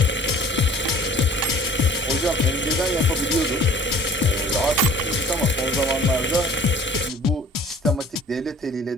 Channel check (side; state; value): both; normal; correlation 0.48